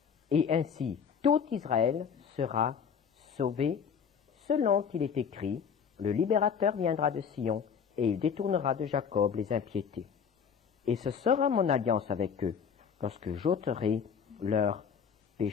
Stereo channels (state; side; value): quieter; right; 6.9 dB